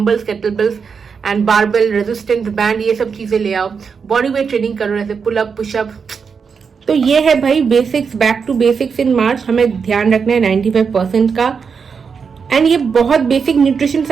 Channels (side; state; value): left; quieter; 5.9 dB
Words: kettlebells and barbell, resistance band, ये सब चीजें ले आओ। बॉडी वेट ट्रेनिंग करो, जैसे पुलअप, पुशअप। तो ये है भाई बेसिक्स, बैक टू बेसिक्स इन मार्च। हमें ध्यान रखना है 95% का। एंड ये बहुत बेसिक न्यूट्रिशन